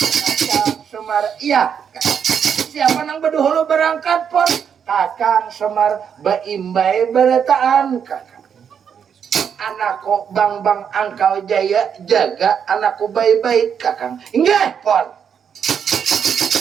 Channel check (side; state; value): left; quieter; 7.6 dB